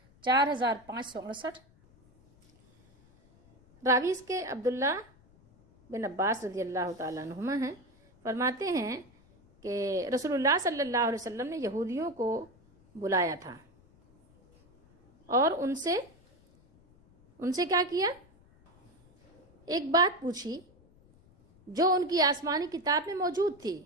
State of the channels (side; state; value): left; noise; rumble, 29 dB below the sound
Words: 4568۔ راوی اس کے عبداللہ بن عباس رضی اللہ تعالیٰ عنہما ہیں، فرماتے ہیں کہ رسول اللہ صلی اللہ علیہ وسلم نے یہودیوں کو بلایا تھا اور ان سے کیا کیا، ایک بات پوچھی جو ان کی آسمانی کتاب میں موجود تھی،